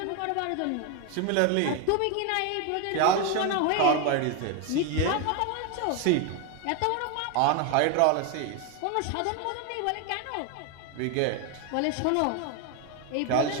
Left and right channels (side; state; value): both; different; correlation 0.01